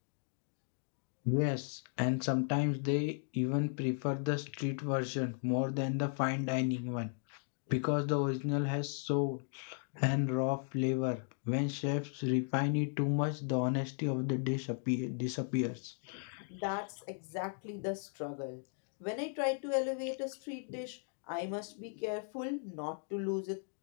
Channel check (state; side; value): silent; right; 54 dB below the other